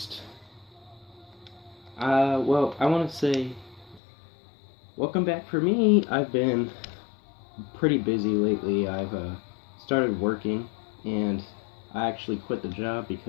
I want to say, welcome back for me. I've been pretty busy lately. I've started working, and I actually quit the job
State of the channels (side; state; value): right; drops out; at 4.0 s